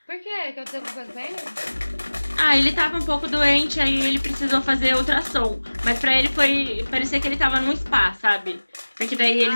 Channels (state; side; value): inverted; both; correlation -1.00